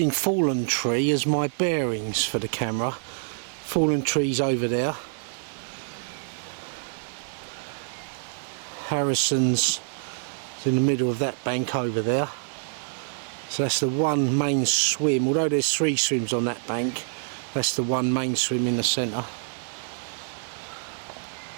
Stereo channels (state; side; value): silent; left; digital silence